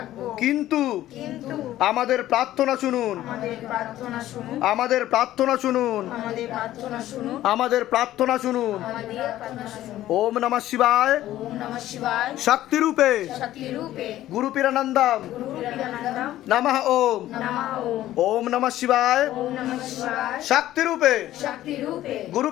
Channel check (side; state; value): right; quieter; 13.9 dB